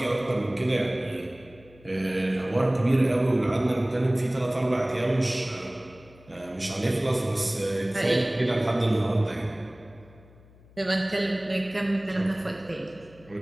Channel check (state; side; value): noise; left; hum, 25 dB below the sound